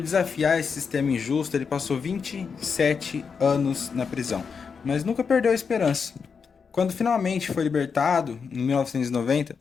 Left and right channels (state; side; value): quieter; right; 5.8 dB